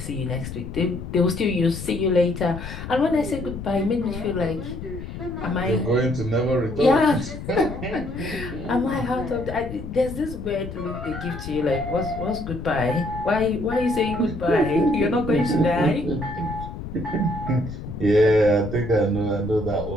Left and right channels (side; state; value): left; noise; rumble, 9 dB below the sound